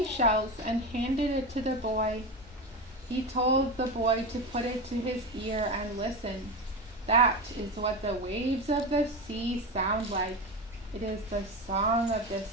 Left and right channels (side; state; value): both; normal; correlation 0.21